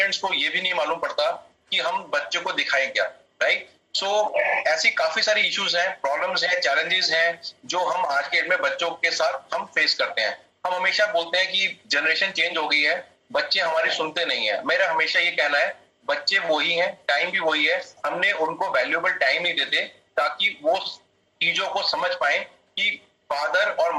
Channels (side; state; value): both; identical; correlation 1.00